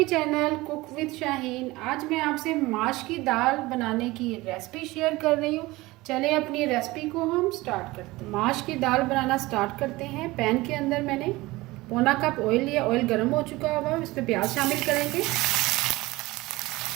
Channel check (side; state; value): left; quieter; 20.3 dB